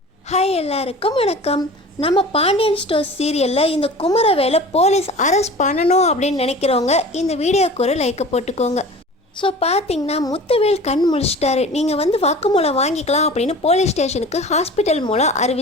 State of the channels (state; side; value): normal; both; correlation 0.40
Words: Hi எல்லாருக்கும் வணக்கம். நம்ம பாண்டியன் ஸ்டோர்ஸ் சீரியலில் இந்த குமரவேலை போலீஸ் அரெஸ்ட் பண்ணணும் அப்படின்னு நினைக்கிறவங்க இந்த வீடியோக்கு ஒரு லைக்கை போட்டுக்கோங்க. ஸோ பார்த்தீங்கன்னா முத்துவேல் கண் முழிச்சிட்டாரு. நீங்கள் வாக்குமூலம் வாங்கிக்கலாம் அப்படின்னு போலீஸ் ஸ்டேஷனுக்கு ஹாஸ்பிட்டல் மூலம்